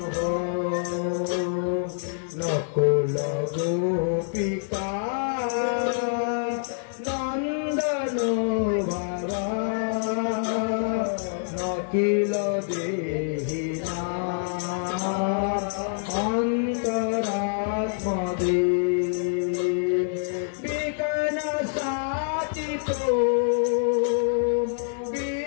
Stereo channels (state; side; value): silent; right; 61 dB below the other